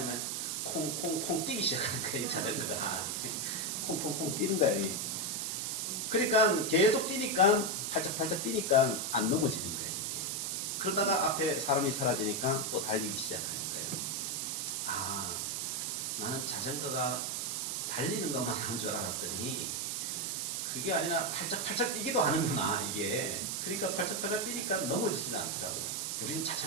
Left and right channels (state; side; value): noise; right; hiss, 1 dB below the sound